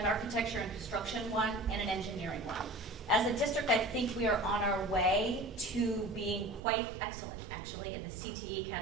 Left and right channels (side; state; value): left; drops out; at 6.6 s